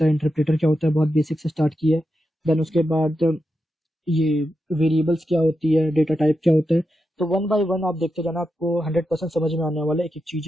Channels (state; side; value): normal; both; correlation 0.87